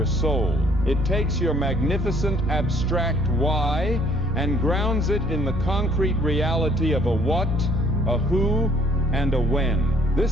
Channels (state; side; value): normal; both; correlation 0.61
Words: soul. It takes your magnificent abstract why and grounds it in the concrete reality of a what, a who, and a when.